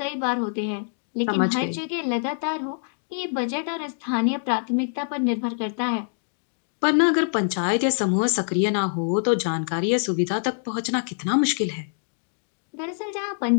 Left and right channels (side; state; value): right; silent; digital silence